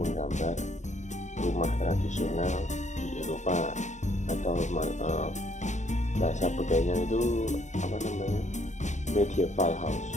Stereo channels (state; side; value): late; right; 0.34 ms